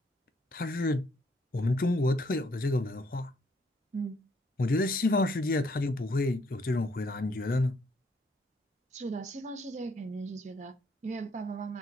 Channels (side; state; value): both; normal; correlation 0.69